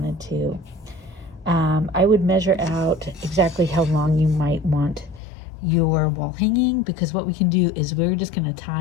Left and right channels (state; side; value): drops out; right; at 5.2 s